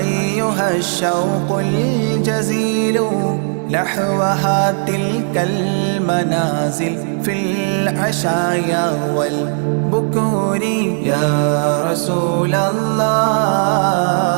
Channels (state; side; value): silent; left; digital silence